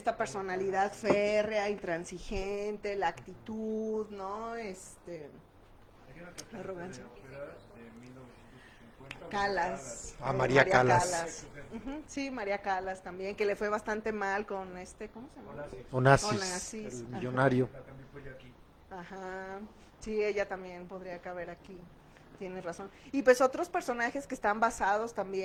personalidad férrea, intransigente, la actitud, ¿no? La arrogancia. Calas. María Calas. Sí, María Calas también, que le fue bastante mal con ¿cómo se llama? Onassis, el millonario. Ajá. Sí, ella también podría caber aquí. Tienes razón. Y pues otros personajes que están basados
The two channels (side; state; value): both; identical; correlation 1.00